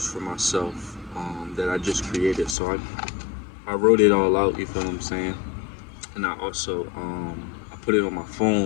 for myself, that I just created. So I wrote it all out, you feel what I'm saying? And I also I put it on my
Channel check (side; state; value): right; drops out; at 2.6 s